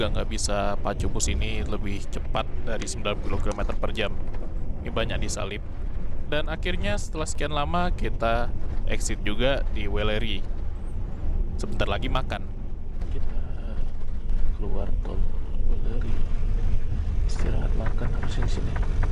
nggak bisa pacu bus ini lebih cepat dari 90 km per jam. Ini banyak disalip. Dan akhirnya setelah sekian lama, kita exit juga di Weleri. Sebentar lagi makan. Kita keluar tol Weleri, istirahat makan harusnya di sini.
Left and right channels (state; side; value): identical; both; correlation 1.00